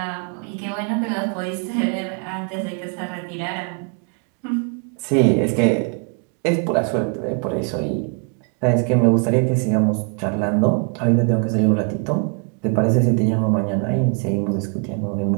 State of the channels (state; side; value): quieter; left; 37.4 dB